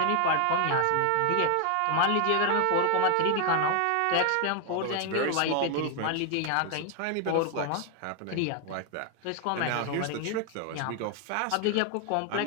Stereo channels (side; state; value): both; different; correlation 0.00